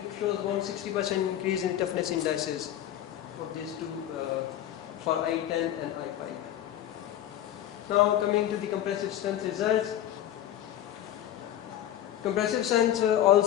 shows about 60% increase in toughness indices for these two, for I10 and I5. Now coming to the compressive strength results. Compressive strength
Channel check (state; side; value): quieter; right; 11.7 dB